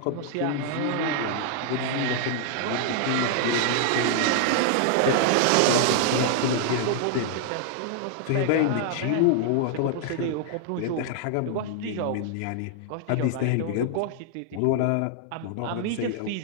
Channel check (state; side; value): different; both; correlation 0.00